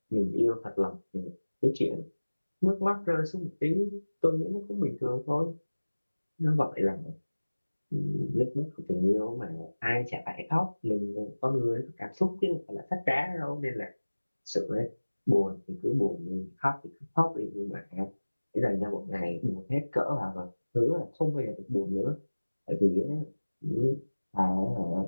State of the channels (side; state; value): both; inverted; correlation -1.00